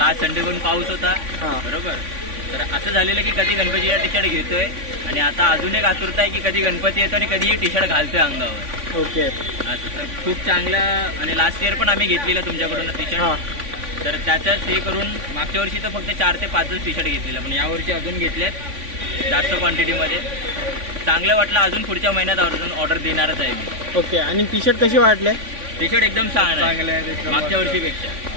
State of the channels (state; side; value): late; left; 3.5 ms